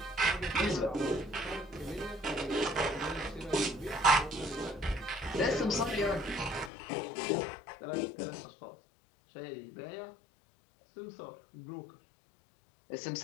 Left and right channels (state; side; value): drops out; right; at 6.7 s